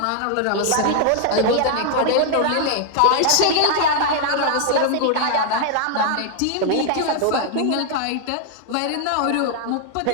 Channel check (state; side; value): different; both; correlation 0.00